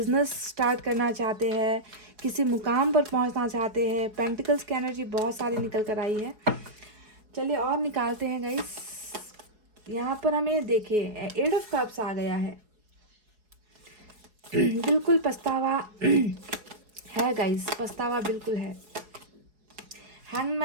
स्टार्ट करना चाहते हैं, किसी मुकाम पर पहुंचना चाहते हैं। पेंटिकल्स की एनर्जी बहुत सारी निकल कर आई है। चलिए और निकालते हैं गाइस। यहाँ पर हमें देखिए 8 ऑफ कप्स आ गया है। बिल्कुल पछतावा है गाइस, पछतावा बिल्कुल है।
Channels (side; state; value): left; late; 4.7 ms